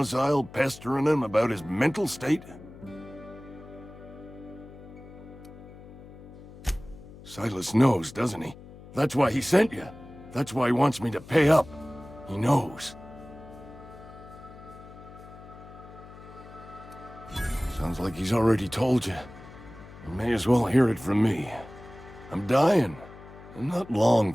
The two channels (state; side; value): noise; left; hum, 18 dB below the sound